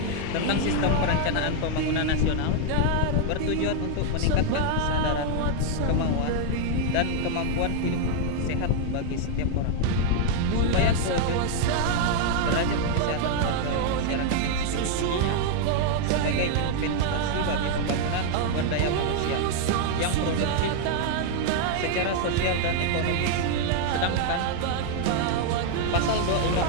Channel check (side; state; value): both; different; correlation 0.00